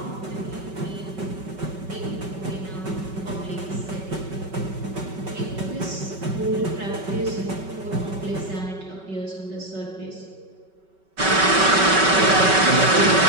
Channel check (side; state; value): left; late; 5.2 ms